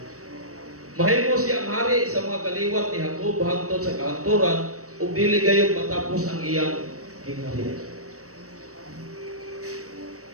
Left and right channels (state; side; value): late; left; 0.65 ms